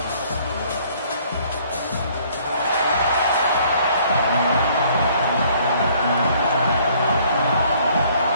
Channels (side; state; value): both; inverted; correlation -0.60